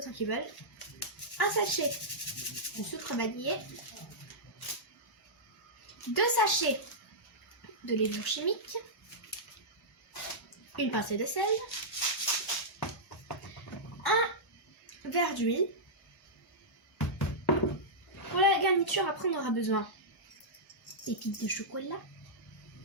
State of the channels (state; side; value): normal; both; correlation -0.10